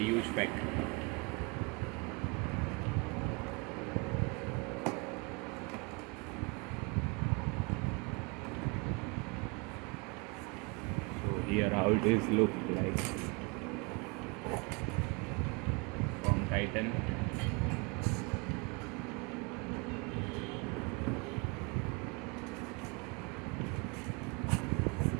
huge pack. Here how it is look like from Titan.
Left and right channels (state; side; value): quieter; left; 29.8 dB